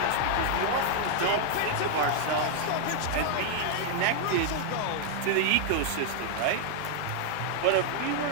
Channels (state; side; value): different; both; correlation 0.00